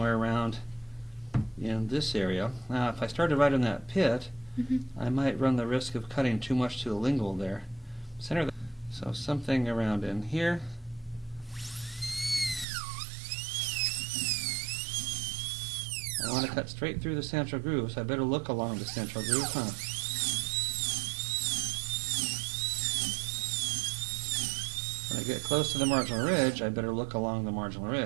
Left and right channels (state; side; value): drops out; left; at 12.7 s